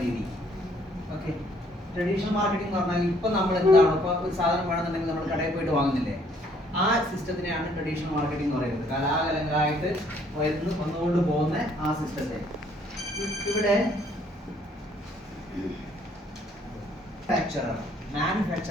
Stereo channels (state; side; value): normal; both; correlation 0.64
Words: രീതി. ഓക്കെ, ട്രഡീഷണൽ മാർക്കറ്റിംഗ് എന്ന് പറഞ്ഞാൽ ഇപ്പം നമ്മൾ എന്താണ്, ഇപ്പോൾ ഒരു സാധനം വേണമെന്നുണ്ടെങ്കിൽ നമ്മൾ കടയിൽ പോയിട്ട് വാങ്ങുന്നില്ലേ, ആ സിസ്റ്റത്തിനെയാണ് ട്രഡീഷണൽ മാർക്കറ്റിംഗ് എന്ന് പറയുന്നത്. കലാകാലങ്ങളായിട്ട് വന്നുകൊണ്ട് പോകുന്ന ആ സിസ്റ്റത്തെ. ഇവിടെ